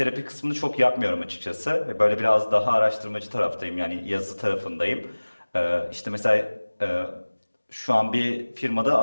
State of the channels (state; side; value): inverted; both; correlation -1.00